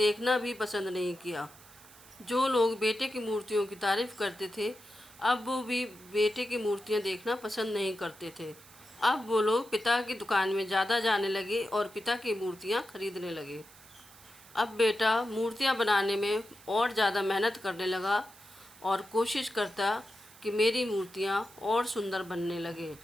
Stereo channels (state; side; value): noise; right; hiss, 22 dB below the sound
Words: भी पसंद नहीं किया। जो लोग बेटे की मूर्तियों की तारीफ करते थे, अब वो भी बेटे की मूर्तियाँ देखना पसंद नहीं करते थे। अब वो लोग पिता की दुकान में ज़्यादा जाने लगे और पिता की मूर्तियाँ खरीदने लगे। अब बेटा मूर्तियाँ बनाने में और ज़्यादा मेहनत करने लगा और कोशिश करता कि मेरी मूर्तियाँ और सुंदर बनने लगे।